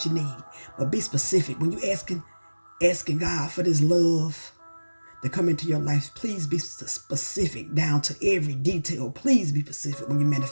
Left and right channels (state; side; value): inverted; both; correlation -1.00